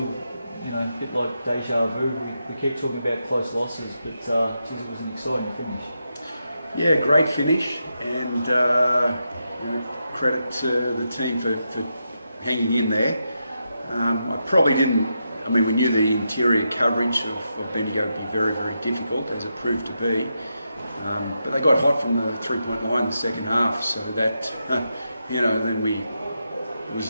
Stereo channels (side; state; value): both; inverted; correlation -0.85